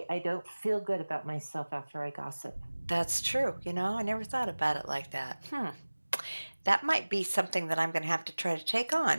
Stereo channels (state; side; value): inverted; both; correlation -1.00